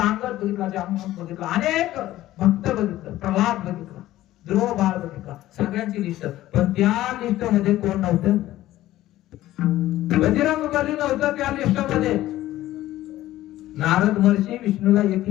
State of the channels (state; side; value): quieter; right; 15.0 dB